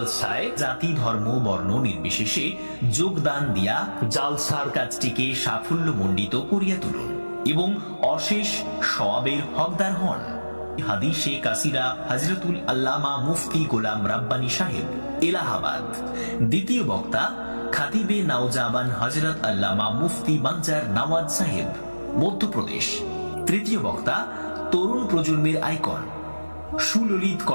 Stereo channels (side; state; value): both; inverted; correlation -1.00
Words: জাতি ধর্ম বর্ণ নির্বিশেষে যোগদান দিয়া জালসার কাজটিকে সাফল্যমণ্ডিত করিয়া তুলুন এবং অশেষ সওয়াবের হকদার হন। হাদিসে কাসিরা হযরতুল আল্লামা মুফতি গোলাম রাব্বানী সাহেব, এলাহাবাদ। দ্বিতীয় বক্তা খাতিবে নাওজাবান হযরত আল্লামা মুফতি বাঞ্জার নওয়াজ সাহেব, মধ্যপ্রদেশ। তৃতীয় বক্তা তরুণ প্রজন্মের আইকন, সুললিত